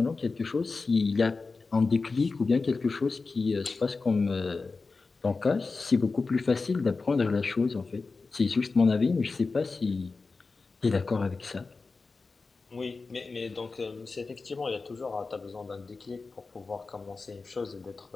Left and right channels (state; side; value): quieter; right; 4.1 dB